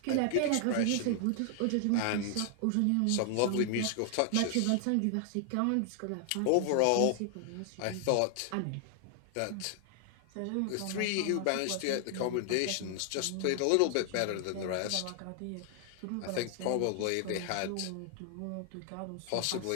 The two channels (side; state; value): both; different; correlation 0.00